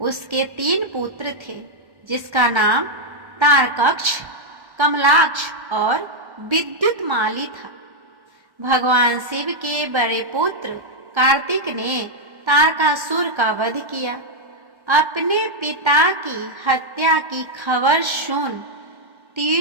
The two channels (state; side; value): late; left; 1.1 ms